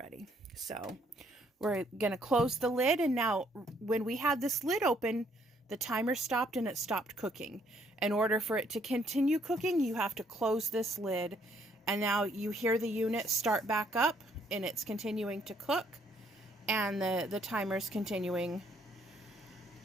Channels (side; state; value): both; normal; correlation 0.68